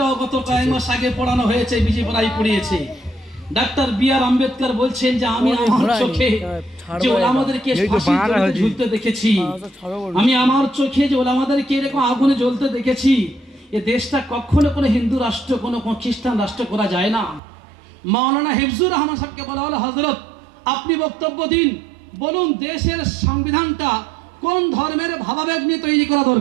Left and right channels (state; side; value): drops out; left; at 17.4 s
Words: গত কয়েক মাস আগে পড়ানো হয়েছে, বিজেপিরাই পড়িয়েছে। ডক্টর বি.আর. আম্বেদকর বলছেন যে আমি আমার চোখে যে ওলামাদেরকে ফাঁসিতে ঝুলতে দেখেছি, আমি আমার চোখে যে ওলামাদেরকে এরকম আগুনে জ্বলতে দেখেছি, এ দেশটা কখনো কোনো হিন্দু রাষ্ট্র কোনো খ্রিস্টান রাষ্ট্র করা যায় না। মাওলানা হিফজুর রহমান সাহেবকে বলা হলো, হযরত আপনি বক্তব্য দিন, বলুন দেশের সংবিধানটা কোন ধর্মের ভাবাবেগ নিয়ে তৈরি করা